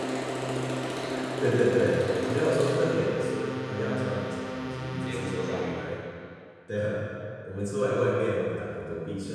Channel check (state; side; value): identical; both; correlation 1.00